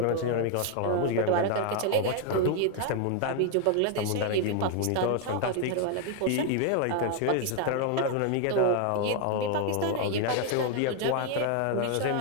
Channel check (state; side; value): different; both; correlation 0.01